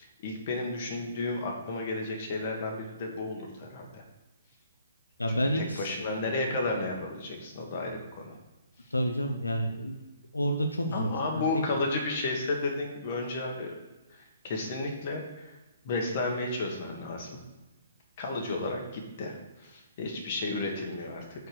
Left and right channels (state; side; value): inverted; both; correlation -0.61